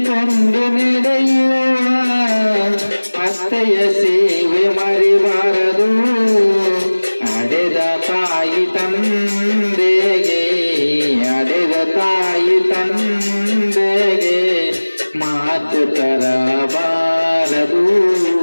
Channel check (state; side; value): inverted; both; correlation -1.00